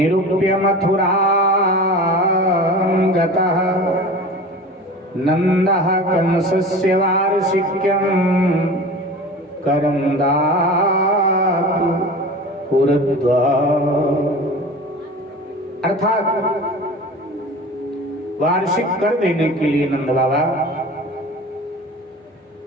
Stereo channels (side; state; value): both; normal; correlation 0.36